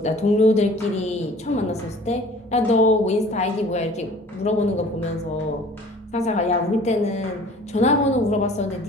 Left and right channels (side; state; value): both; normal; correlation 0.48